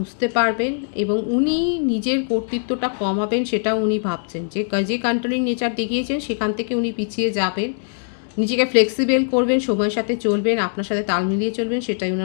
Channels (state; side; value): silent; right; digital silence